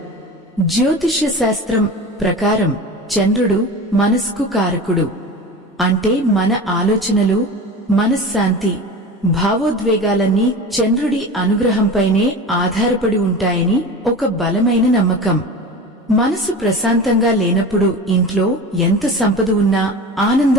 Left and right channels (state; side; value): normal; both; correlation 0.32